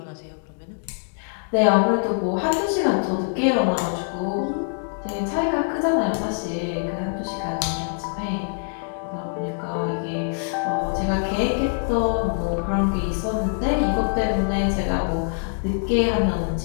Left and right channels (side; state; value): right; silent; 59 dB below the other